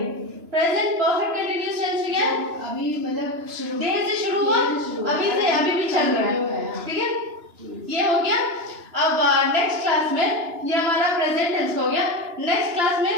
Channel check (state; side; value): late; left; 2.9 ms